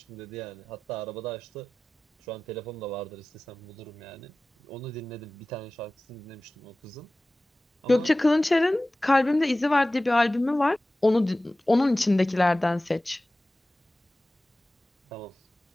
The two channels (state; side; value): normal; both; correlation 0.97